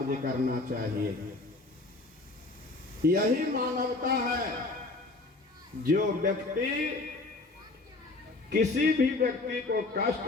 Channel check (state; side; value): quieter; right; 3.2 dB